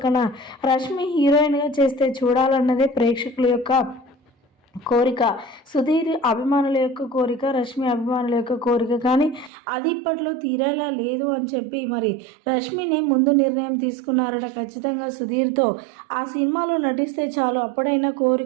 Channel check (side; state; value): left; drops out; at 9.5 s